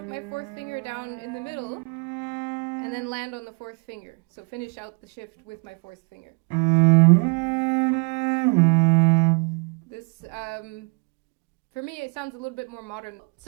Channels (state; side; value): quieter; left; 34.3 dB